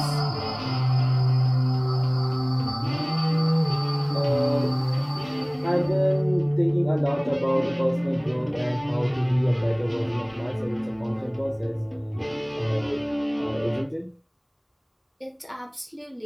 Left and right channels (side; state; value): both; identical; correlation 1.00